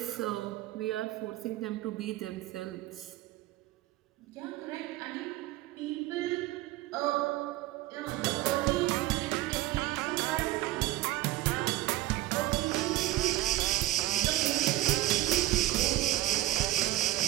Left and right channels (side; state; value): left; quieter; 15.8 dB